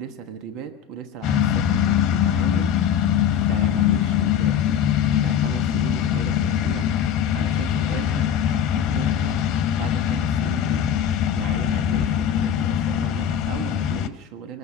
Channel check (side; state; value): right; quieter; 8.6 dB